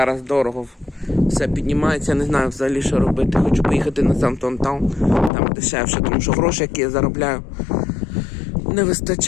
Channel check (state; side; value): drops out; right; at 5.3 s